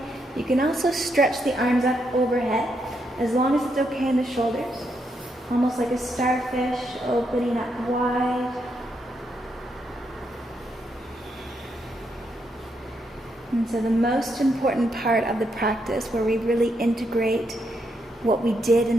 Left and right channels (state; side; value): normal; both; correlation 0.79